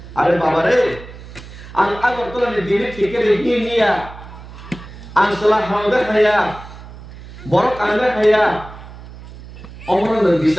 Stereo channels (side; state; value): right; noise; hum, 16 dB below the sound